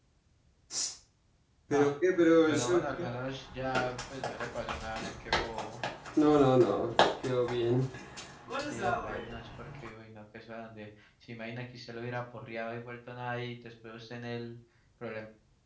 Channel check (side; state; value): both; identical; correlation 1.00